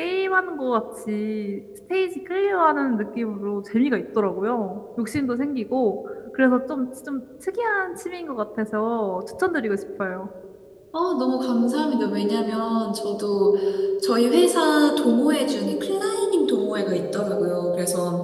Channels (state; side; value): identical; both; correlation 1.00